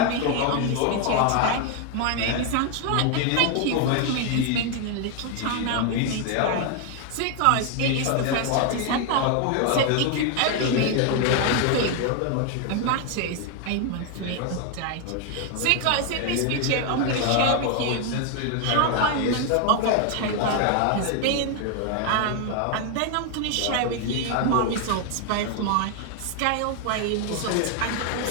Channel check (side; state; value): both; different; correlation 0.01